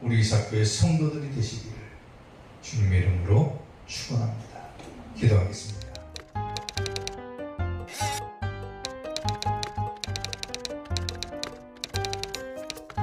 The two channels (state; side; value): identical; both; correlation 1.00